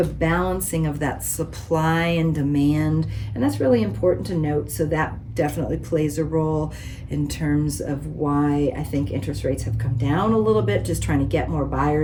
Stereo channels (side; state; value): both; identical; correlation 1.00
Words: balancing of that supply and demand. And that's really important to note. So that definitely plays a role in terms of why I think interest rates have come down a little bit, just trying to get more